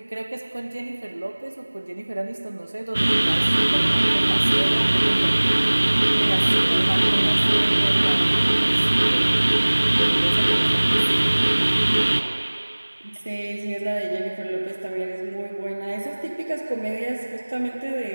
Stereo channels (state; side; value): inverted; both; correlation -1.00